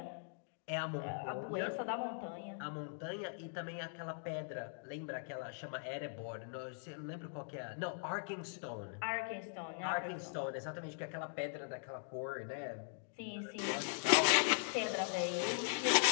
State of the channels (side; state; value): right; silent; digital silence